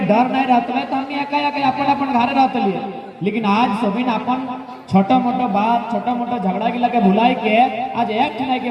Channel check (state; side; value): identical; both; correlation 1.00